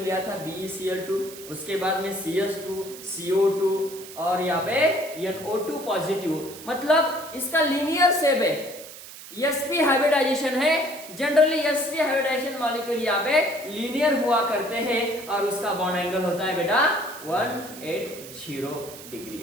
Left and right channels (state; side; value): noise; right; hiss, 15 dB below the sound